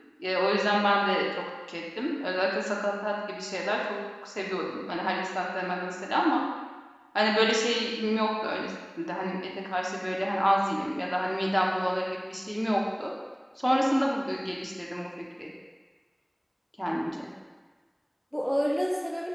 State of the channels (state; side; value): identical; both; correlation 1.00